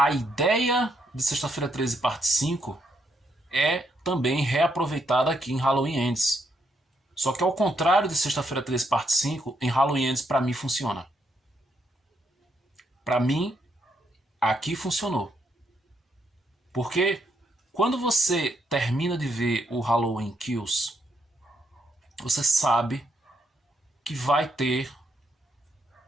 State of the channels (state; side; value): normal; both; correlation 0.76